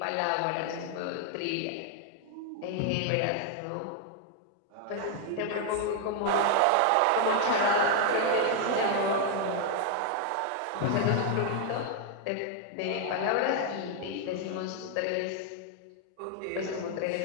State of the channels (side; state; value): both; different; correlation 0.00